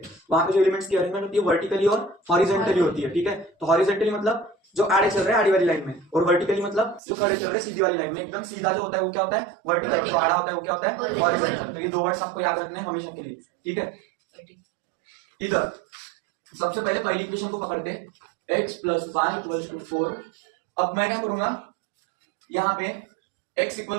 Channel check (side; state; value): left; drops out; at 7.0 s